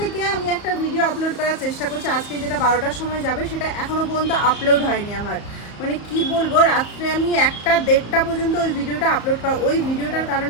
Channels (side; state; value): right; late; 34 ms